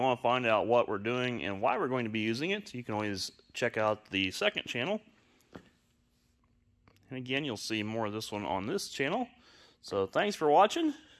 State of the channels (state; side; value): identical; both; correlation 1.00